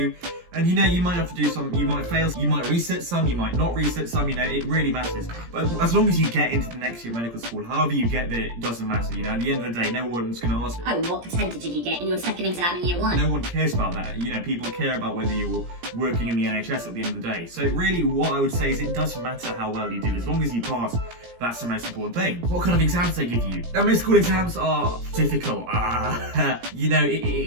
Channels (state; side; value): late; left; 17 ms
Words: and you might have to do some, you might fail, you might reset some, you might not reset some, it really matters. But as long as you get into the next year of medical school, however you get there, it doesn't matter, at the end of the day, no one's going to ask, oh, what percentage did you get in your second exam in year 1? No one cares about that, people care about whether you're working in the NHS at the end of the day. So really, what I would say is it doesn't matter how well you do, as long as you pass, that's the most important thing. What kind of exams they give you? Now, med school exams are difficult.